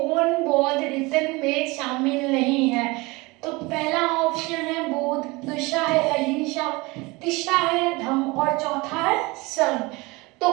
बौद्ध रीतन में शामिल नहीं है। तो पहला ऑप्शन है बुद्ध, दूसरा है अहिंसा, तीसरा है धम्म और चौथा है संघ। तो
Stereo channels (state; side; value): quieter; left; 24.0 dB